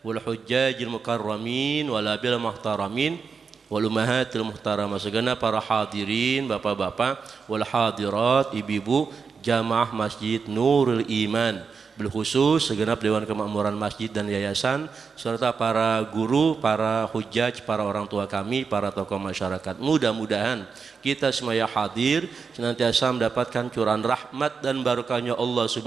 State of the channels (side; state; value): left; quieter; 5.4 dB